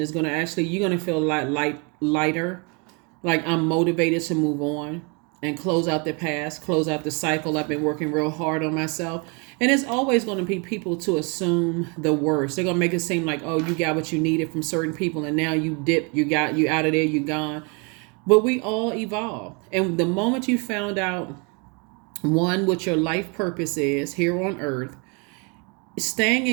going to actually, you're going to feel lighter. Like, I'm motivated to move on and close out the past, close out the cycle. I've been working real hard on myself. And it's always going to be people to assume the worst. They're going to make it seem like, oh, you got what you needed from certain people and now you dip, you out of there, you gone. But we all evolve. And the moment you found out, one, what your life purpose is here on earth, staying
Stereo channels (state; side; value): quieter; left; 32.7 dB